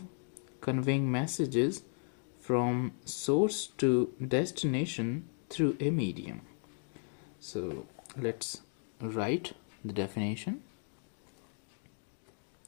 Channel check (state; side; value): silent; right; 54 dB below the other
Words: conveying messages from source to destination through a medium. So let's write the definition.